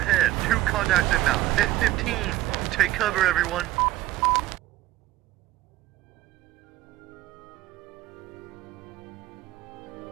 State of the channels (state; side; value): quieter; left; 15.5 dB